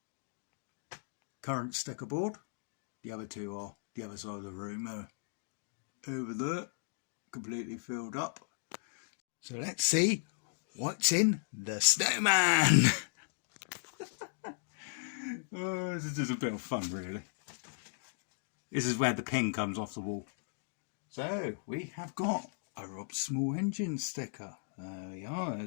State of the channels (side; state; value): right; silent; digital silence